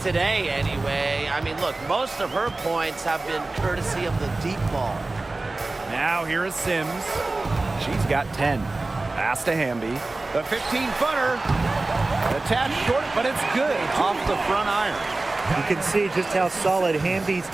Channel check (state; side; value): quieter; left; 3.2 dB